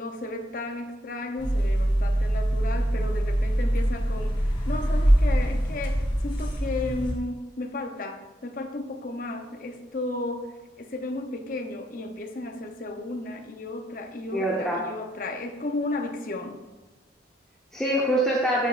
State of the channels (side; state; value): both; normal; correlation 0.78